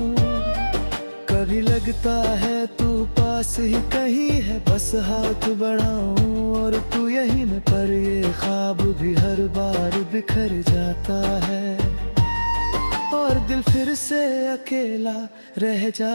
कभी लगता है तू पास ही कहीं है, बस हाथ बढ़ाऊं और तू यहीं न, पर ये ख्वाब भी हर बार बिखर जाता है। ओ और दिल फिर से अकेला रह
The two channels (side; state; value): both; inverted; correlation -1.00